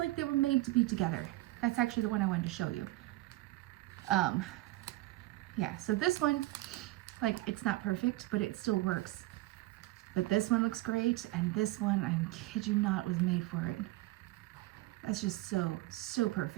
they were made to be together. That's actually the one I wanted to show you. Yeah, so this one, like, it's not perfect, but it still works. But this one looks great, and this one, I kid you not, was made for it. That's just so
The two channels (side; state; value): left; quieter; 18.5 dB